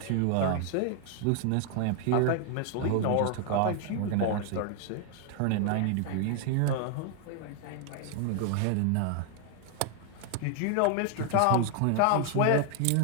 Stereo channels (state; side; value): different; both; correlation 0.00